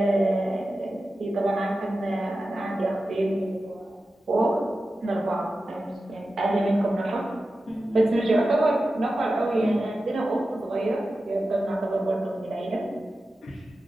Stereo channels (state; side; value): normal; both; correlation 0.93